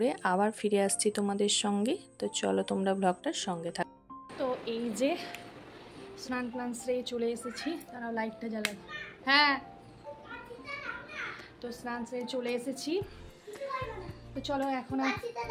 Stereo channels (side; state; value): both; identical; correlation 1.00